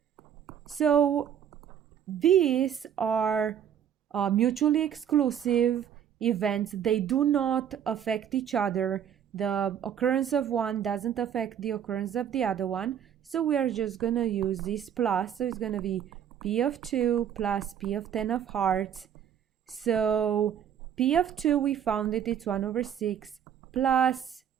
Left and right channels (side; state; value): left; quieter; 9.2 dB